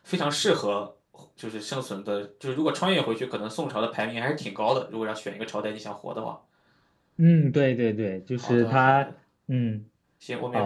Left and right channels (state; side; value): identical; both; correlation 1.00